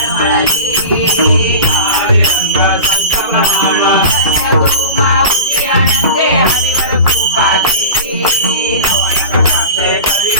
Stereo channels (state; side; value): inverted; both; correlation -0.32